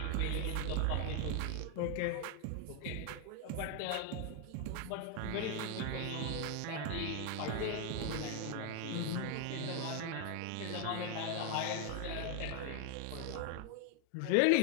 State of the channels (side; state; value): both; different; correlation 0.01